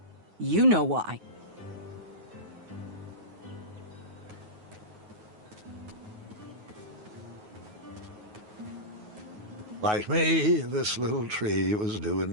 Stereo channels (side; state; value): left; late; 9.4 ms